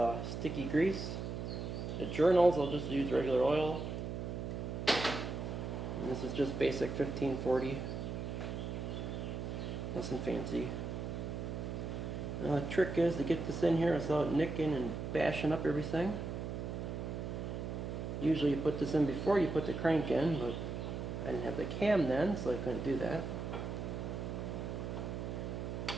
sticky grease. The journals I'll just use regular oil. And this is just basic 1540. Nothing fancy. Now the trick is to get this in here without nicking and bashing up everything. Usually you put this in before you put the crank in, but I didn't have the cam then, so I couldn't do that.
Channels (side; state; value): right; noise; hum, 4 dB below the sound